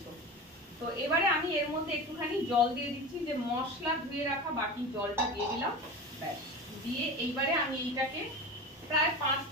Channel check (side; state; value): both; normal; correlation 0.29